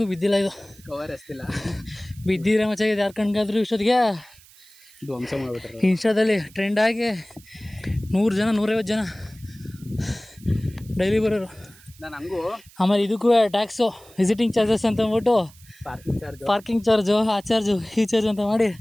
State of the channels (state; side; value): noise; right; hiss, 25 dB below the sound